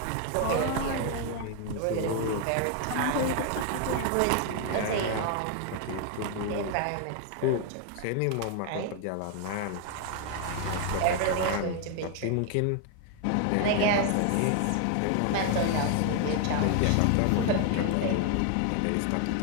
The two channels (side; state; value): both; different; correlation 0.00